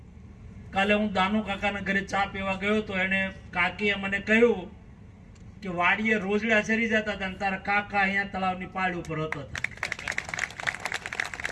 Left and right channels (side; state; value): both; identical; correlation 1.00